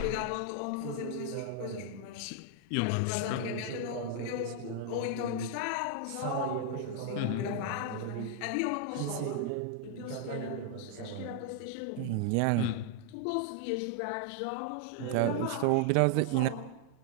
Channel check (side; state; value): both; different; correlation 0.00